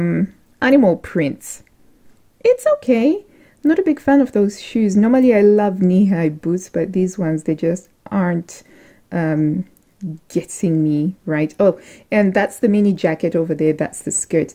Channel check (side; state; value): both; identical; correlation 1.00